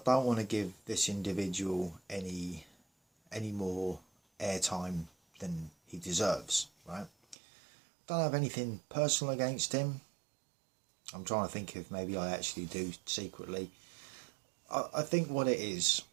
don't want to give this individual any more airtime than he deserves, right? Don't have anything personal against him. I'm trying to think if maybe I actually do secretly. I think what it is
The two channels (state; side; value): drops out; left; at 7.4 s